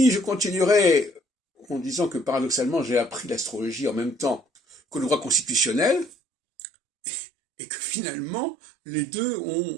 je continuerai en disant que paradoxalement, j'ai appris l'astrologie en même temps que le droit constitutionnel, et que finalement, les deux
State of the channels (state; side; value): drops out; left; at 6.1 s